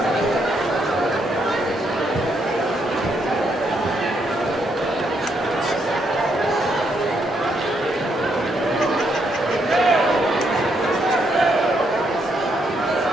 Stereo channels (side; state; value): both; normal; correlation 0.76